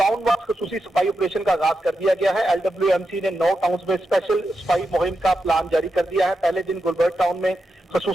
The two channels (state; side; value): normal; both; correlation 0.87